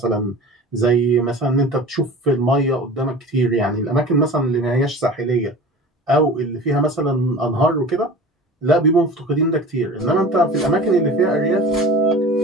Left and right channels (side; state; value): both; normal; correlation 0.38